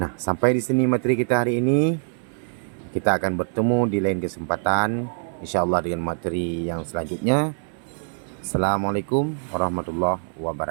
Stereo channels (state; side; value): silent; left; 63 dB below the other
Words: sampai di sini materi kita hari ini. Kita akan bertemu di lain kesempatan, insyaallah dengan materi yang selanjutnya. Assalamualaikum warahmatullahi